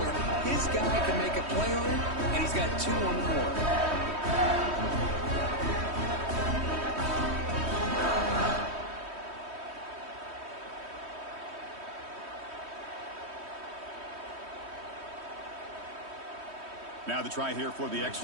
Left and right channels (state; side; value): late; left; 3.1 ms